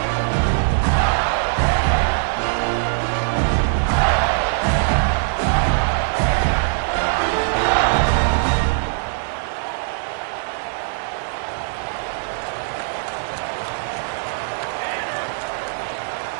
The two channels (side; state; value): left; silent; digital silence